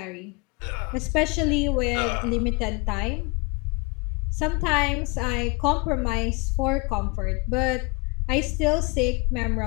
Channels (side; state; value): right; quieter; 28.8 dB